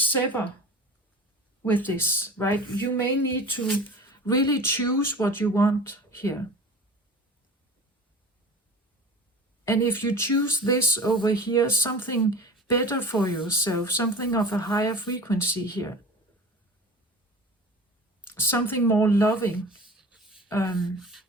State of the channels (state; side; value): normal; both; correlation 0.37